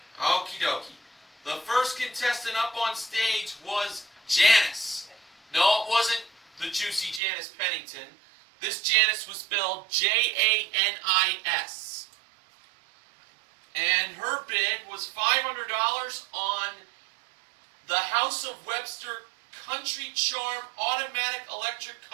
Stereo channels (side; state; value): left; drops out; at 7.2 s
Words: Okie dokie. The first contestant up on stage was Janice. No, it wasn't the juicy Janice Pennington. This Janice was spelled Janis. And her bid was $500 on the House of Webster Country Charm Automatic Electric